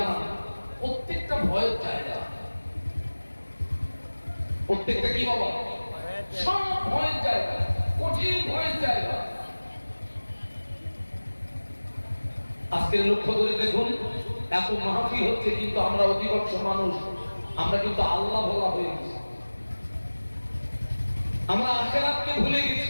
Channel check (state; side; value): inverted; both; correlation -1.00